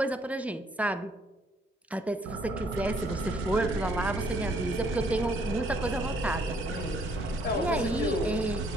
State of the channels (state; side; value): normal; both; correlation 0.66